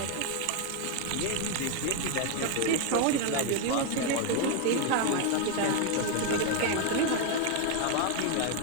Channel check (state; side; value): different; both; correlation 0.01